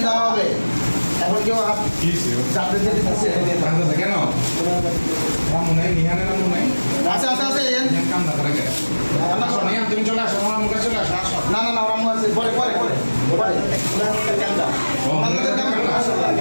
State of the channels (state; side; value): inverted; both; correlation -1.00